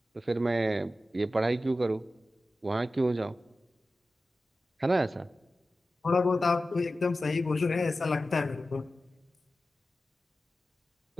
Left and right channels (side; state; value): both; normal; correlation 0.94